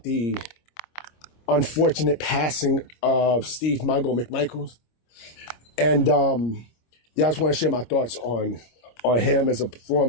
the unfortunate passing of Steve Mongo McMichael. And I just want to share my thoughts on him as a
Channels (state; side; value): late; right; 25 ms